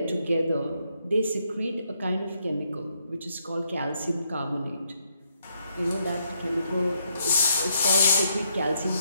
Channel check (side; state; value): both; inverted; correlation -0.76